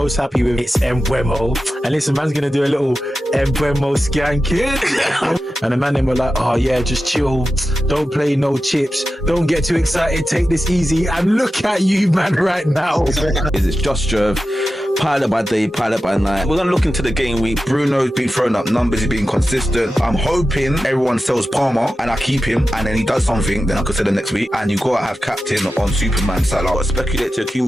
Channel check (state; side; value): normal; both; correlation 0.92